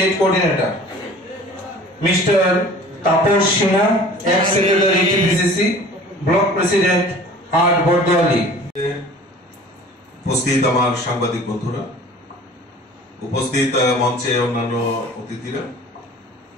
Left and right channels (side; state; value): both; normal; correlation 0.45